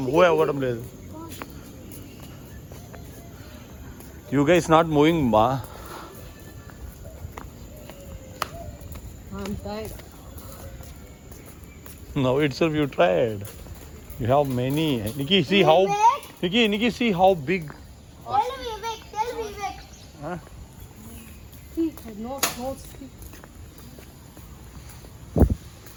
move అవ్వడం లేదు. You guys not moving బా. I'm tired. No, itself you tried. You have many. Nikki, see how. Nikki, see how big. Tell Vivek. Huh? See, no see.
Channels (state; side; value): identical; both; correlation 1.00